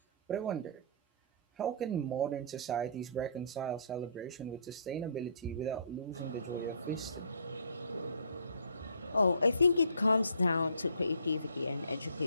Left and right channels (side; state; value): both; inverted; correlation -0.56